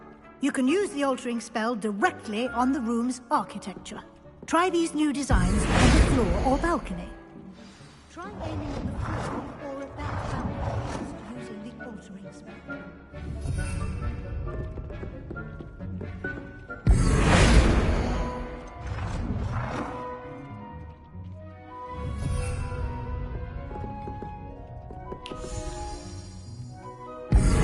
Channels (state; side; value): identical; both; correlation 1.00